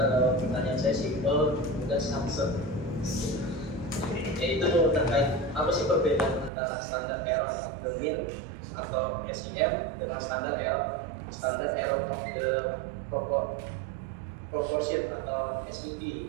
pertanyaan saya simpel dan samsung. Yaitu terkait apa sih perbedaan antara standar error of the mean atau SEM dengan standar error of the proportion atau SET.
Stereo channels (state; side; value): drops out; left; at 6.5 s